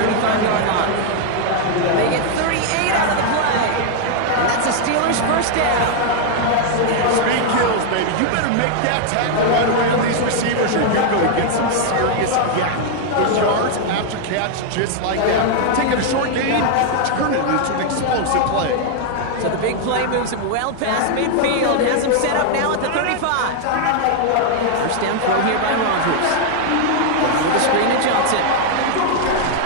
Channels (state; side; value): different; both; correlation 0.00